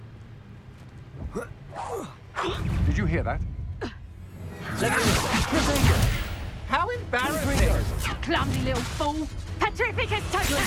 Did you hear that? How embarrassing! Clumsy little fool! Petrificus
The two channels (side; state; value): both; identical; correlation 1.00